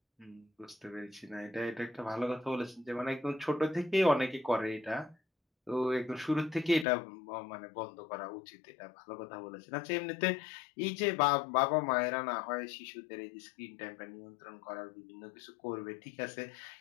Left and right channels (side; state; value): right; drops out; at 6.9 s